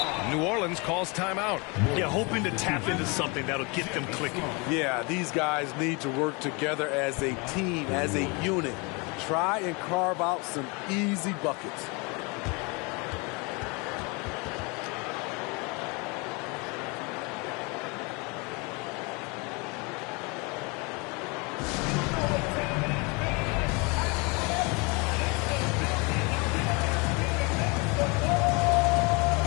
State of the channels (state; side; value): quieter; right; 29.4 dB